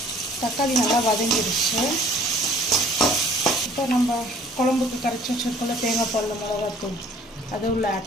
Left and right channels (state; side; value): normal; both; correlation 0.54